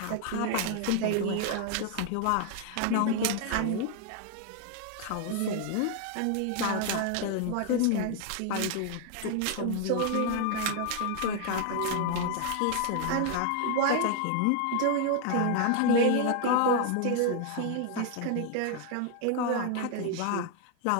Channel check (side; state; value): both; different; correlation 0.00